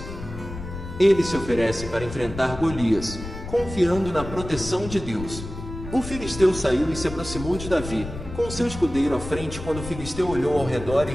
Ele se oferece para enfrentar Golias, confiando na proteção de Deus. O filisteu saiu e se aproximou de Davi, com seu escudeiro à frente. Quando o filisteu olhou ao redor e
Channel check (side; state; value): left; noise; rumble, 10 dB below the sound